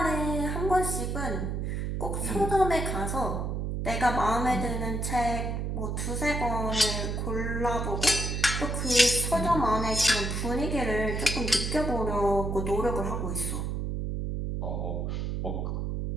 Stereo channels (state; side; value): noise; right; hum, 2 dB below the sound